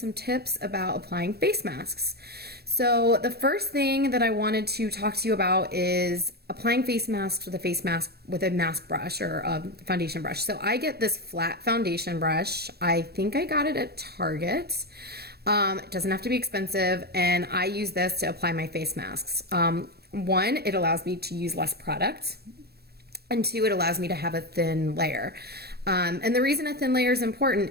tips about applying face masks. So the first thing that I wanted to talk to you about is applying face masks with a mask brush or a foundation brush. So I get this flat foundation brush. I think I got it at Target. It doesn't have to be expensive, and I use this to apply my face masks. One, it allows me to use less product, and two, it allows me to have a thin layer. And the reason a thin layer is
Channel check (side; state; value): left; late; 0.47 ms